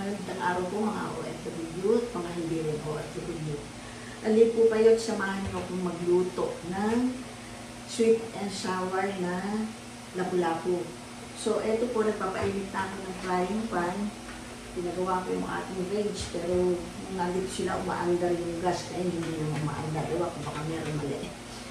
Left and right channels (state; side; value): identical; both; correlation 1.00